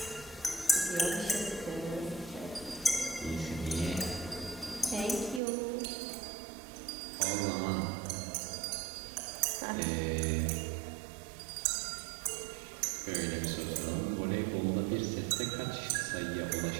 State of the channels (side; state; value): left; drops out; at 5.4 s